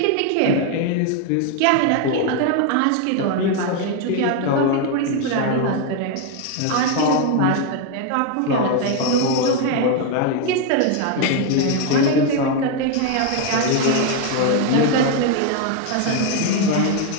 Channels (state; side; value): different; both; correlation 0.01